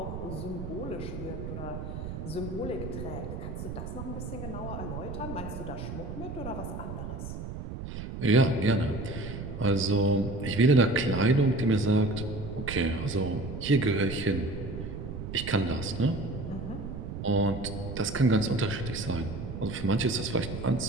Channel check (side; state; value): right; noise; rumble, 7 dB below the sound